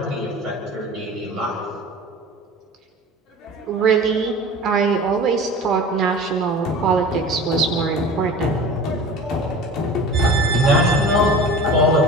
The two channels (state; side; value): normal; both; correlation 0.38